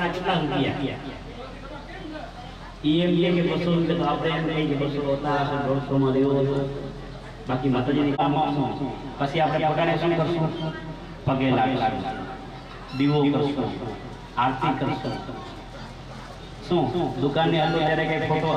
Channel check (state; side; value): identical; both; correlation 1.00